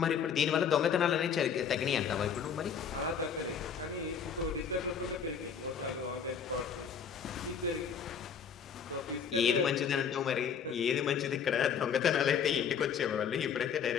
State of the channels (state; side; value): quieter; right; 7.1 dB